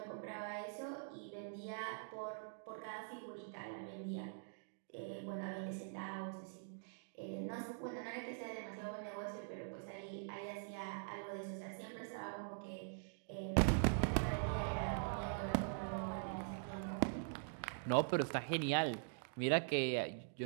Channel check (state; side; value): silent; left; digital silence